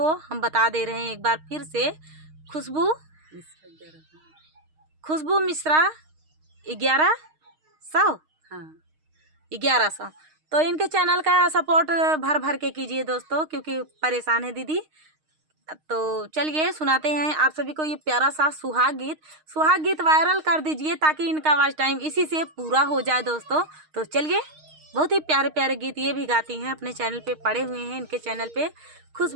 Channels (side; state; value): left; late; 6.5 ms